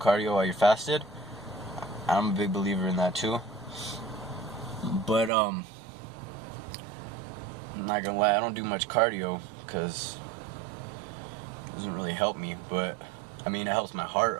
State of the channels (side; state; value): left; drops out; at 5.3 s